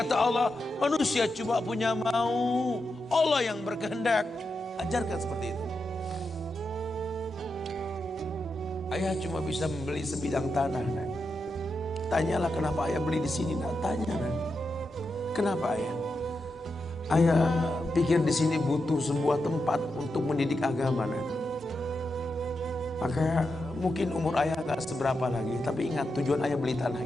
Allah, manusia cuma punya mau, Allah yang berkehendak. Ajarkan seperti itu. Ayah cuma bisa membeli sebidang tanah, nak. Tanyalah kenapa ayah beli di sini, nak. Tanya, nak. Kenapa ayah? Ayah pikir di sini butuh sebuah tempat untuk mendidik agama, nak. Maka mungkin umur ayah gak seberapa lagi, tapi ingat tujuan ayah beli tanah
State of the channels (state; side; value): normal; both; correlation 0.87